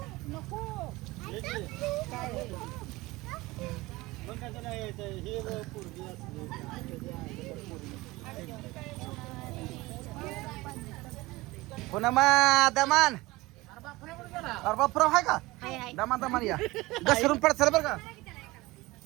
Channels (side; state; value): left; quieter; 20.7 dB